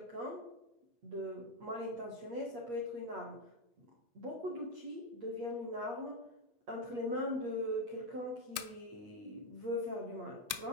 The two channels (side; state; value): left; late; 8.4 ms